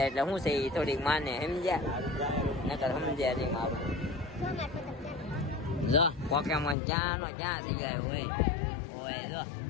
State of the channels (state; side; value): drops out; right; at 6.8 s